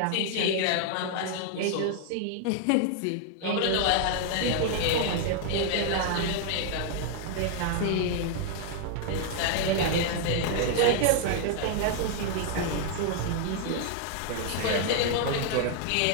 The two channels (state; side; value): different; both; correlation 0.00